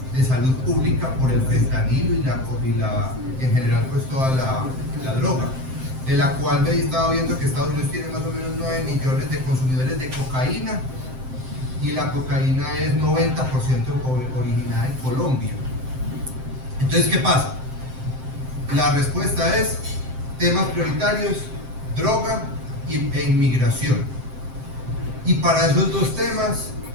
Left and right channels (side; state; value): left; late; 7.7 ms